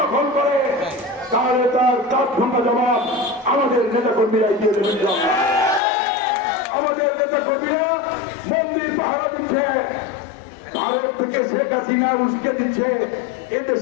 দখল করে, তাহলে তার তাৎক্ষণিক জবাব আমাদের নেতা কর্মীরাই দিয়ে দেবেন। আমাদের নেতা কর্মীরা মন্দির পাহারা দিচ্ছে, ভারত থেকে শেখ হাসিনা উস্কে দিচ্ছে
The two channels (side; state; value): right; drops out; at 5.8 s